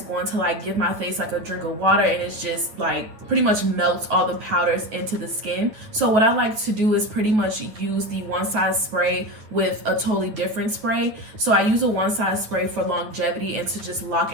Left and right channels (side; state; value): left; late; 9.6 ms